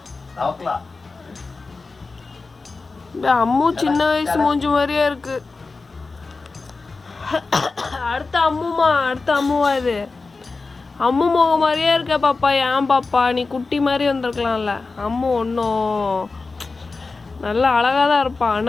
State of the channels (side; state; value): right; quieter; 3.9 dB